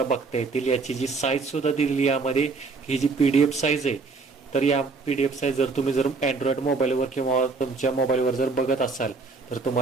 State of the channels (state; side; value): quieter; left; 4.2 dB